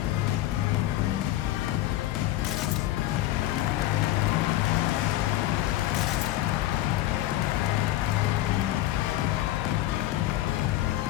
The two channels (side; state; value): right; quieter; 14.8 dB